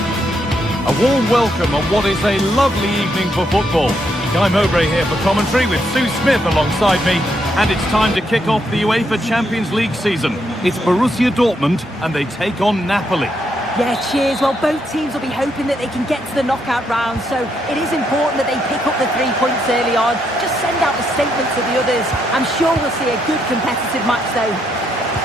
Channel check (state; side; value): normal; both; correlation 0.77